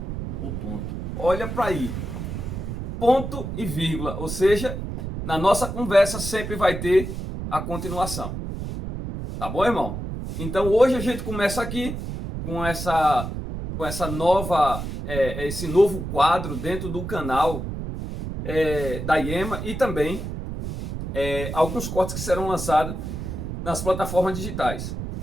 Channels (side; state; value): right; noise; rumble, 6 dB below the sound